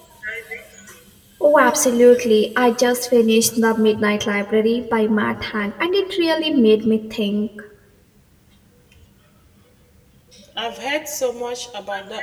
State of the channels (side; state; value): both; identical; correlation 1.00